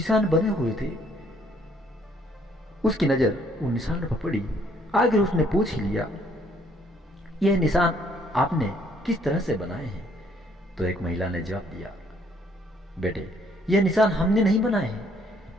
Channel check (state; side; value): normal; both; correlation 0.65